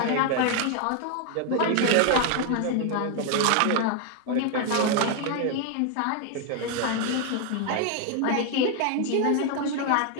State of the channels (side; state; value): both; different; correlation 0.00